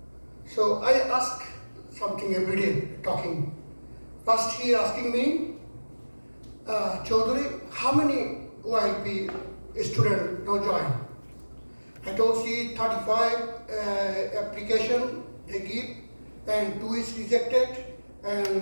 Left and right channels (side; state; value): both; inverted; correlation -1.00